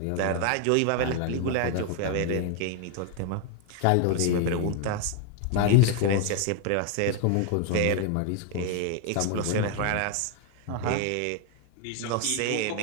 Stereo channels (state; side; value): different; both; correlation 0.01